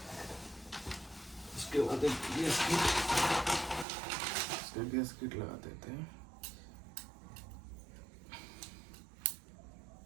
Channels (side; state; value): left; drops out; at 3.9 s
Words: उसके बाद एक गैस किट, इसका गैस किट लगा देते हैं।